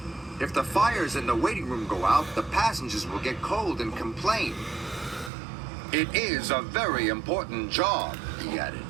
"If the fires in the waiting room go out, the passengers will get cold and complain." "It is a very important job," he added.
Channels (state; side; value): drops out; left; at 5.3 s